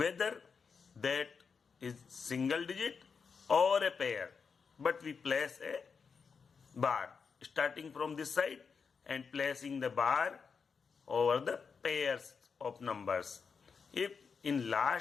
that is single digit or a pair, but we place a bar starting from this side and placing the bar over the pairs of numbers. If in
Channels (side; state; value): right; quieter; 5.7 dB